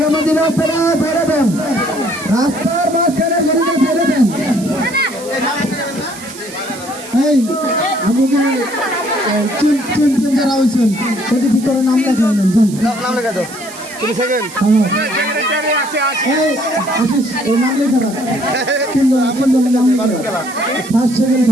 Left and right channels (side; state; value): right; noise; hiss, 16 dB below the sound